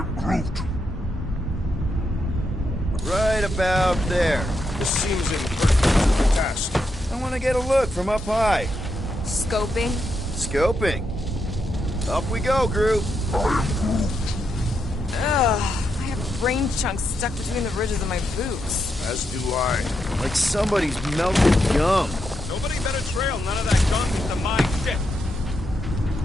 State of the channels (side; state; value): both; normal; correlation 0.82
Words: Groot. Right about there. This seems imperfect task. I want to get a look from up high. Scoping. Scoping. Up we go, Groot. Ugh. I have brain chunks stuck between the ridges of my boots. As do I. Like somebody's melted gum. Nobody better trail none of that gunk into my shit.